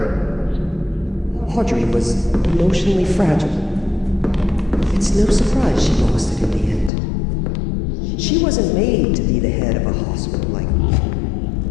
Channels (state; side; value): drops out; right; at 6.9 s